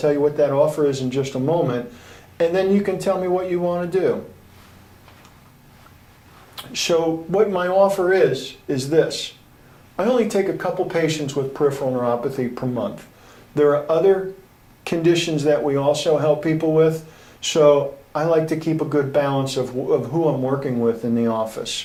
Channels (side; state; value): both; identical; correlation 1.00